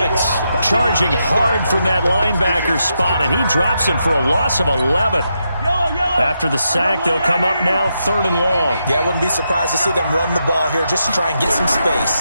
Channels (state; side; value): inverted; both; correlation -0.83